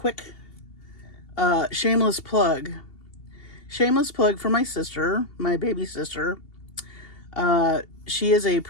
shameless plug. Shameless plug for my sister, my baby sister. She is a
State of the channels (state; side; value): late; right; 2.8 ms